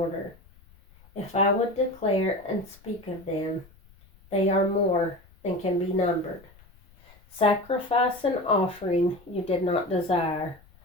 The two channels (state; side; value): noise; left; rumble, 27 dB below the sound